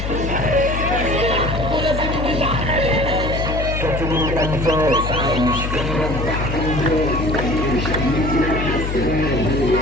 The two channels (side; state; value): left; noise; hum, 3 dB below the sound